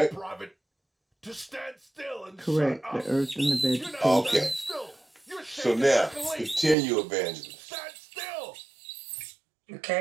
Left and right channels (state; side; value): drops out; left; at 6.8 s